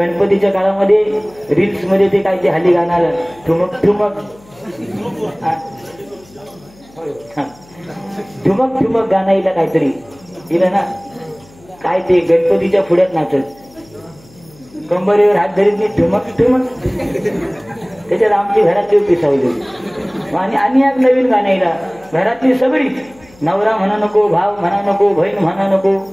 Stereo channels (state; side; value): noise; left; hum, 26 dB below the sound